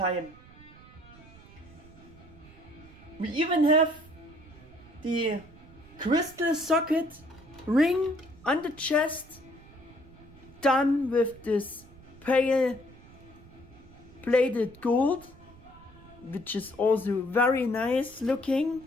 We even have the crystal socket ring on the chest, done with this pale bladed gold, which is also very nice looking.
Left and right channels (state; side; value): noise; right; rumble, 22 dB below the sound